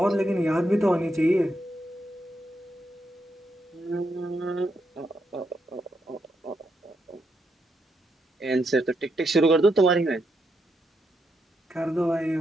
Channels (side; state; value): both; normal; correlation 0.81